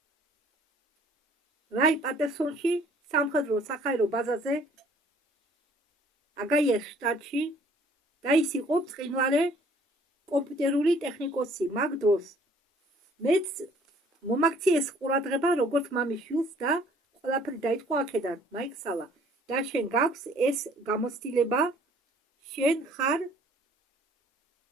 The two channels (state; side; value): normal; both; correlation 0.58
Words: რაი პატერსონში სამხედრო სახაერო ბაზაზე აგაიას შტატში და ის იყო ბრწყინვალე კომპიუტერული ტექნიკოსი. მაგ დროს მეც მომაქციეს ყურადღება როგორც მამის შვილს და ყველაფერი დაიწყო აქედან. მაიქსალა და შენ გაქვს ეს გამოცდილება, შენ ხარ